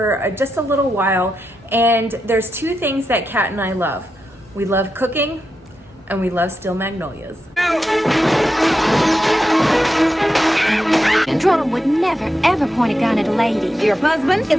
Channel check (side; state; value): both; normal; correlation 0.87